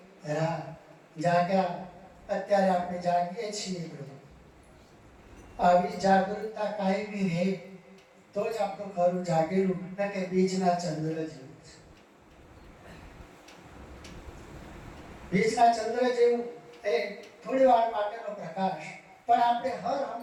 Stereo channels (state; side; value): identical; both; correlation 1.00